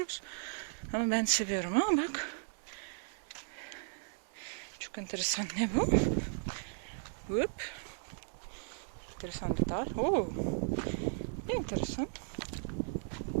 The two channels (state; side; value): silent; left; digital silence